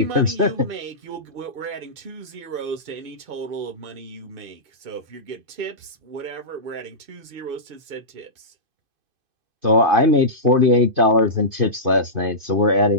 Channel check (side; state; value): left; late; 2.5 ms